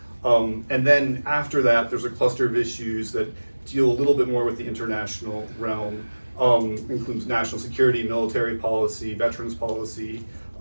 and then after that, there's a cluster of issues that deal a little bit more with the international realm, includes national security, military policy, veterans policy,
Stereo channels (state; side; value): inverted; both; correlation -1.00